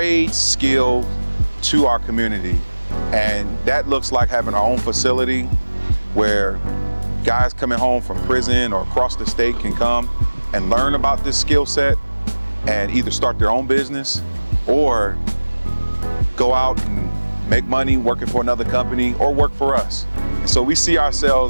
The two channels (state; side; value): inverted; both; correlation -1.00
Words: skill to our community. And that looks like having our own facility where guys coming home from prison or across the state can come and learn about this skill set and either start their own business or go out and make money working for another company or work for us. And so we see